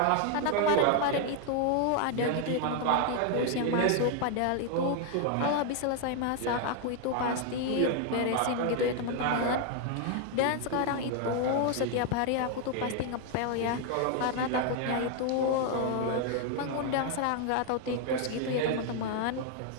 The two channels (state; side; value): different; both; correlation 0.00